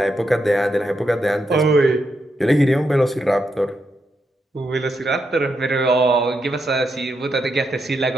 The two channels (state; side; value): normal; both; correlation 0.82